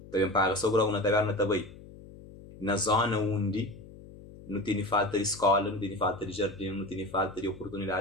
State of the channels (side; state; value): left; noise; hum, 18 dB below the sound